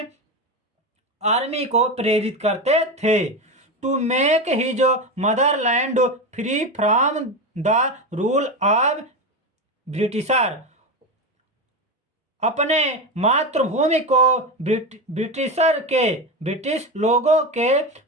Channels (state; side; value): normal; both; correlation 0.18